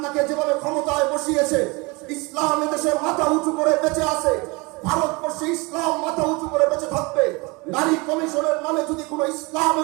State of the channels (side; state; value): left; quieter; 26.6 dB